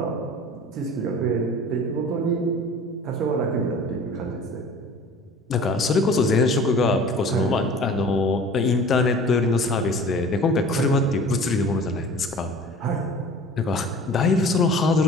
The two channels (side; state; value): both; normal; correlation 0.43